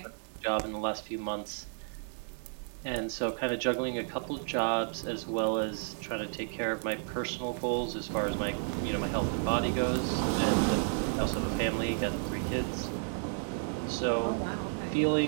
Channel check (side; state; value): left; silent; digital silence